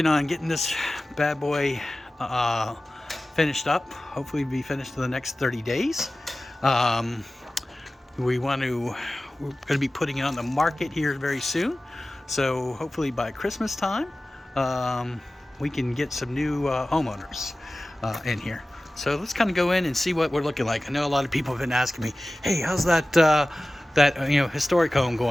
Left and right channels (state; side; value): normal; both; correlation 0.97